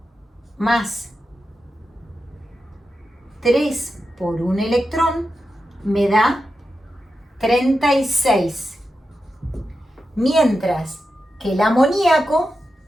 más 3 por un electrón, me da 36. Mientras que el amoníaco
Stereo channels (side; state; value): both; normal; correlation 0.90